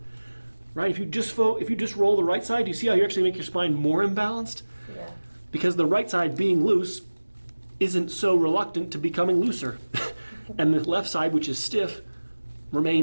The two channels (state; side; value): inverted; both; correlation -1.00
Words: Right? If you just roll the right side, do you see how you actually make your spine more imbalanced? Yeah. Because the right side being loose isn't so reluctant to becoming looser. And the left side, which is stiff,